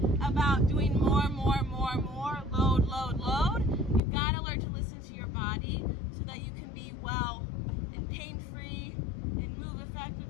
about doing more, load. You've got to learn to listen to your body so that you can be well and pain-free and move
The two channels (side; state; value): right; drops out; at 4.0 s